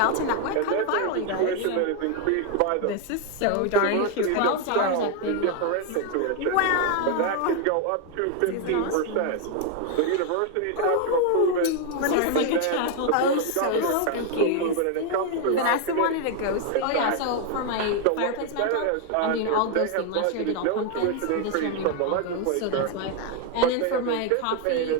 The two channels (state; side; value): different; both; correlation 0.00